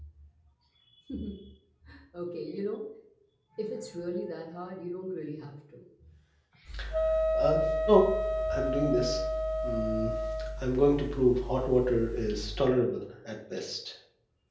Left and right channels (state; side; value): identical; both; correlation 1.00